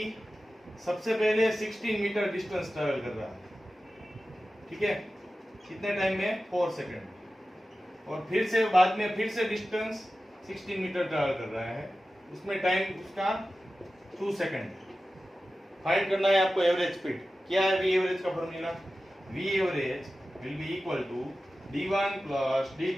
सबसे पहले 16 मीटर डिस्टेंस ट्रैवल कर रहा है, ठीक है, कितने टाइम में? 4 सेकंड, और फिर से बाद में फिर से डिस्टेंस 16 मीटर ट्रैवल कर रहा है, उसमें टाइम उसका 2 सेकंड। फाइंड करना है आपको एवरेज स्पीड। क्या है वी एवरेज का formula? V average will be equal to D1 plus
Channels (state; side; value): normal; both; correlation 0.94